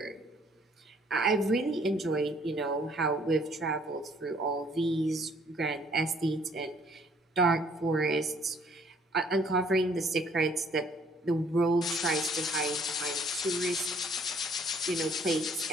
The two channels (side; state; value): both; normal; correlation 0.61